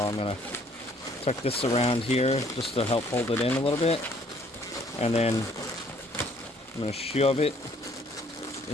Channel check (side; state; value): both; normal; correlation 0.61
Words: I'm going to tuck this around here just to help hold it in a little bit. And then I'm going to shove it